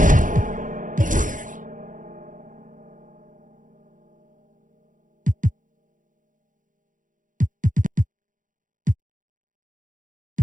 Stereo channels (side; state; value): left; late; 0.38 ms